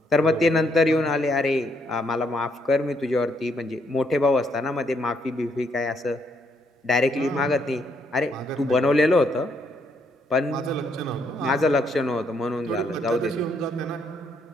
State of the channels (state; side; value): normal; both; correlation 0.73